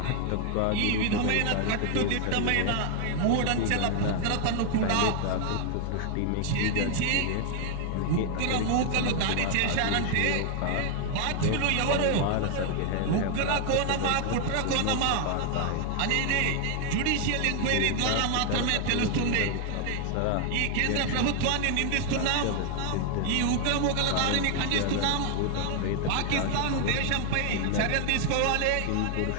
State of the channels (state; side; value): different; both; correlation 0.00